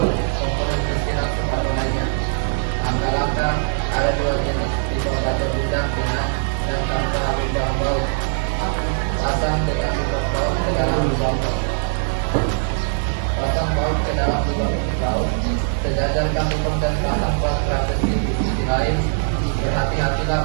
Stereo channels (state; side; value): silent; left; digital silence